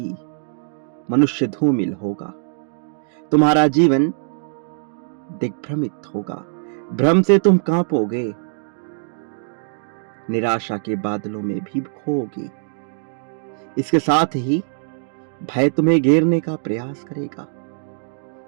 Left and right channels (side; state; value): left; silent; 64 dB below the other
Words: मनुष्य धूमिल होगा, तुम्हारा जीवन दिग्भ्रमित होगा, भ्रम से तुम कांपोगे, निराशा के बादलों में भी खोओगे। इसके साथ ही भय तुम्हें घेरने का प्रयास करेगा,